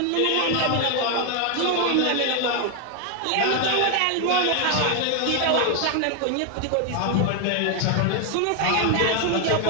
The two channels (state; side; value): different; both; correlation 0.01